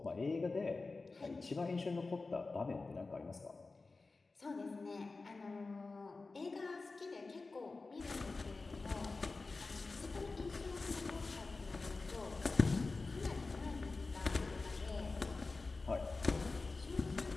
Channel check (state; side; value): quieter; right; 3.7 dB